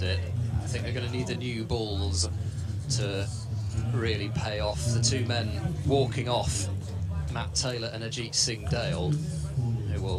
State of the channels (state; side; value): identical; both; correlation 1.00